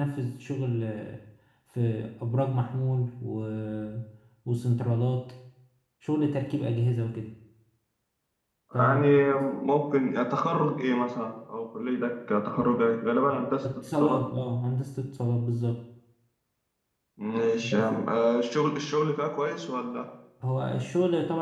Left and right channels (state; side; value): identical; both; correlation 1.00